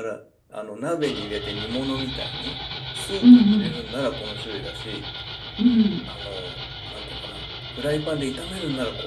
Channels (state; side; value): identical; both; correlation 1.00